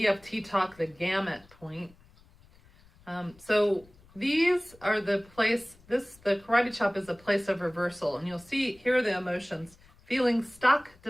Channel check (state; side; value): noise; left; rumble, 27 dB below the sound